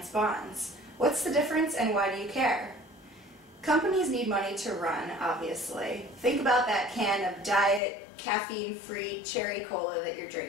bonds? What's the difference and why do you care? Companies need money to run, obviously. Think about that can of diet, caffeine-free cherry cola that you're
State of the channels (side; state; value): right; drops out; at 7.8 s